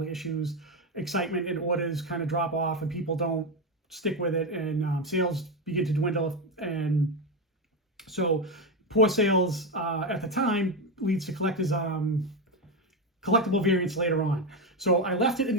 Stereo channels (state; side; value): normal; both; correlation 0.11